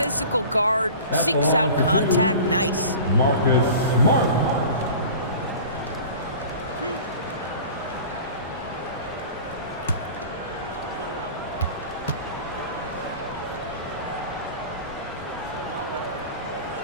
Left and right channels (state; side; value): inverted; both; correlation -0.39